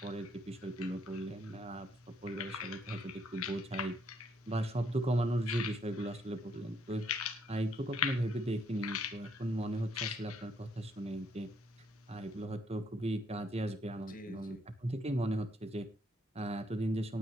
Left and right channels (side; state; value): both; normal; correlation 0.70